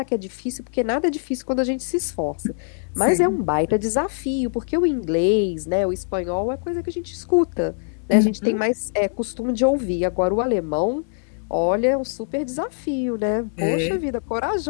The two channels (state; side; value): silent; right; digital silence